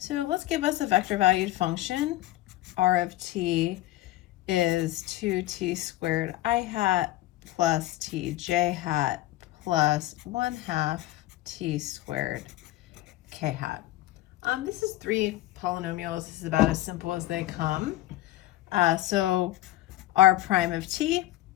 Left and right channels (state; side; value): quieter; right; 15.7 dB